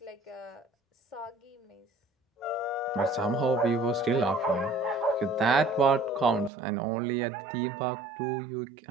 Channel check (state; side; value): drops out; left; at 6.5 s